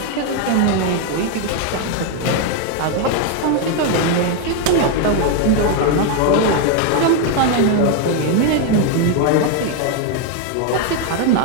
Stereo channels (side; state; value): both; different; correlation 0.01